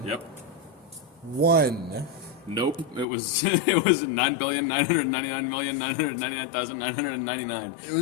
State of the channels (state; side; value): drops out; right; at 3.1 s